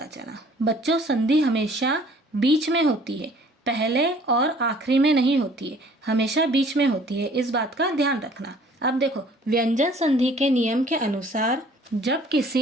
चला। बच्चों, संधि हमेशा बीच में होती है, पहले और आखिरी में नहीं होती है, हमेशा बीच में होती है। इस बात का ध्यान रखना। अब देखो, व्यंजन संधि के नियम के अनुसार जब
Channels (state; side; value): normal; both; correlation 0.54